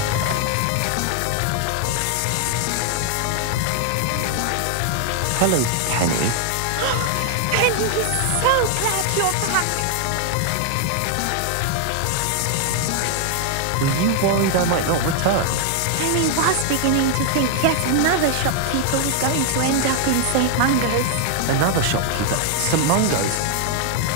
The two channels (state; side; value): different; both; correlation 0.00